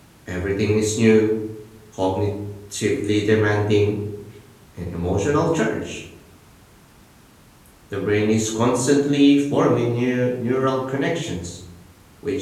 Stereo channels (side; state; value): both; identical; correlation 1.00